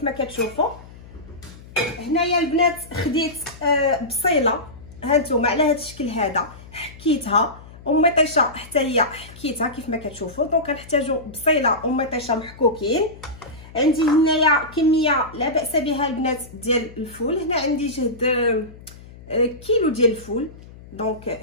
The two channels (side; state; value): left; noise; hum, 19 dB below the sound